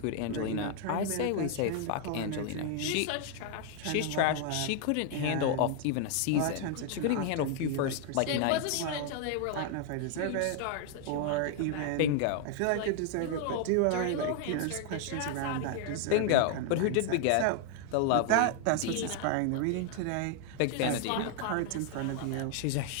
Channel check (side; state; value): both; different; correlation 0.00